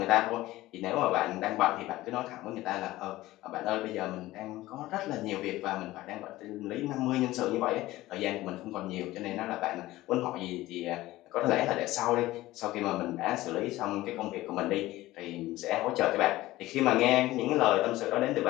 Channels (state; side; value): quieter; right; 17.1 dB